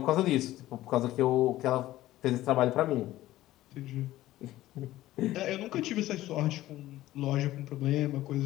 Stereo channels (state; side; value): quieter; right; 15.4 dB